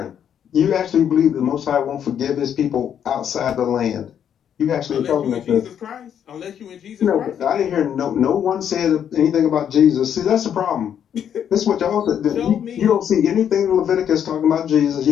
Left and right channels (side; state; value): right; quieter; 9.0 dB